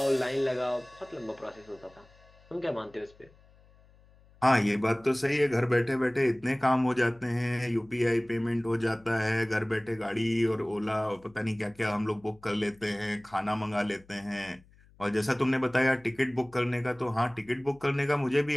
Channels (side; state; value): left; noise; hum, 28 dB below the sound